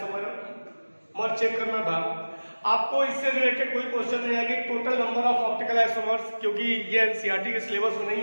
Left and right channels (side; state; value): both; inverted; correlation -1.00